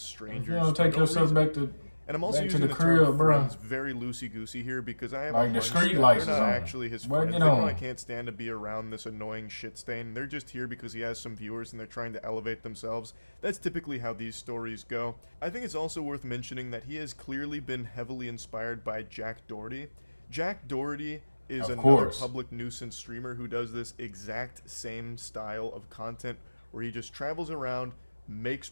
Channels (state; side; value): inverted; both; correlation -1.00